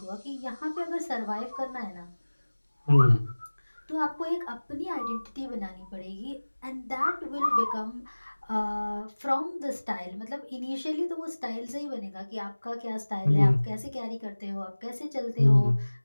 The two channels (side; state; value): both; inverted; correlation -1.00